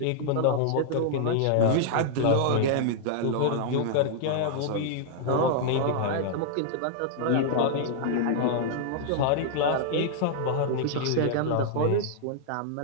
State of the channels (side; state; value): both; different; correlation -0.01